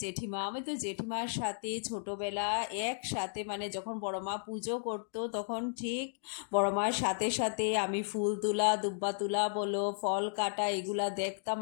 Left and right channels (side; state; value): right; silent; digital silence